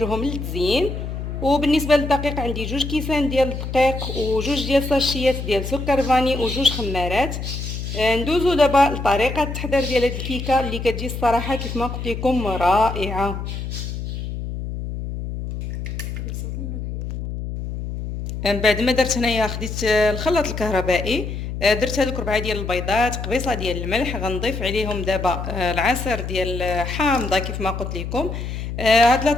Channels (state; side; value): noise; left; hum, 6 dB below the sound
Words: للتزيين. وبالنسبه للدقيق عندي 2 كيسان ديال الدقيق و2 ديال ساشيات ديال سكر فاني و2 خمارات. ندوزو دابا لطريقه التحضير ديال هاد الكيكه اللي كتجي الصراحه كيف ما قلت لكم رائعه. من بعد ما درت هنايا خديت الخلاط الكهربائي. درت هذوك 4 ديال البيضات، قبيصه ديال الملح. غنضيف عليهم دابا العصير ديال حامضه كيف ما قلت لكم. هاد